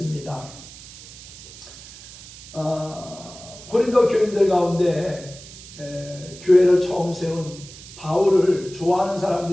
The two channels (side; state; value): right; noise; hiss, 17 dB below the sound